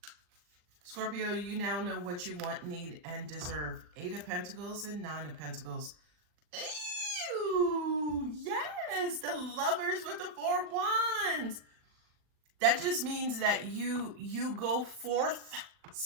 Scorpio, you now know what you want, need, and deserve. Eight of Pentacles and Nine of Pentacles. Ew, yes, the Lovers with the Four of Wands. That just means that you go forth,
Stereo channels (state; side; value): late; left; 39 ms